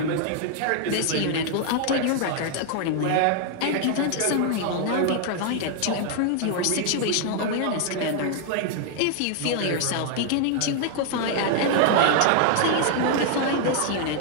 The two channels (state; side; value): different; both; correlation 0.00